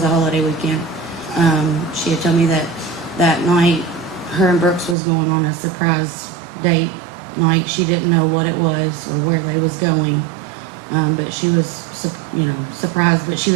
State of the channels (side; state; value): left; drops out; at 5.0 s